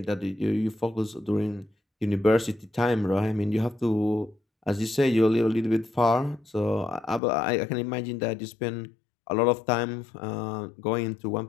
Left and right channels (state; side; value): drops out; right; at 7.2 s